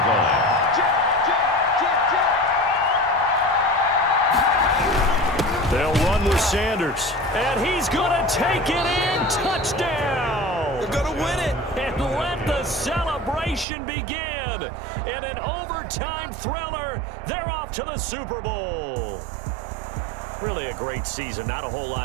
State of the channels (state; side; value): drops out; left; at 13.7 s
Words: line. They'll run with Sanders. And he's going to take it in. Touchdown. They're going to win it. And let the celebration begin. In an overtime thriller, they're off to the Super Bowl. Really a great season. Not a whole